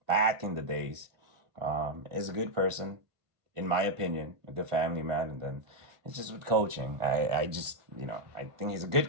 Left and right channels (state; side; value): late; left; 1.4 ms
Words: back in the days. Is a good person, in my opinion, a good family man. And then it's just with coaching. I just, I think he's a